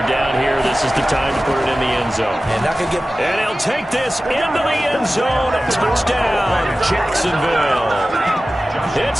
down here. This is the time to put it in the end zone. And not gonna get... And he'll take this into the end zone. Touchdown, Jacksonville.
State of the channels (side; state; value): both; normal; correlation 0.96